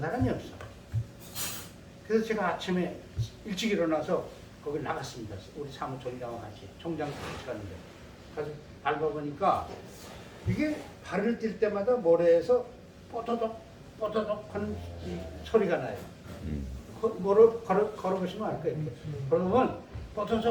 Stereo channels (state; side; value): identical; both; correlation 1.00